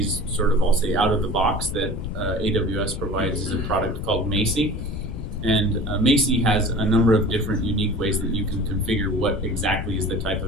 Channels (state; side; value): noise; left; rumble, 6 dB below the sound